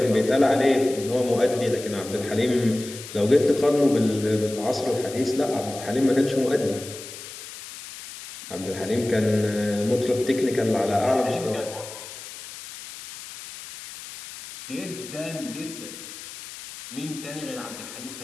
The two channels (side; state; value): left; noise; hiss, 13 dB below the sound